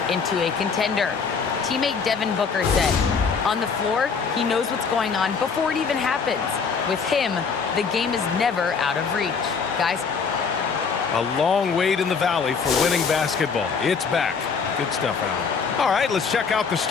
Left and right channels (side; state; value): right; quieter; 5.6 dB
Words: into a contender. Teammate Devin Booker said, on the floor, he knows what's going on before it even happens. With him, the game is never out of reach. Guys. A long wait in the valley for winning basketball. It's back. Good stuff, Alan. All right, let's check out the